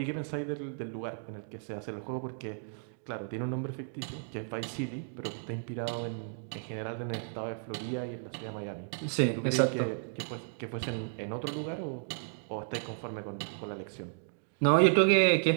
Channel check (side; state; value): left; silent; digital silence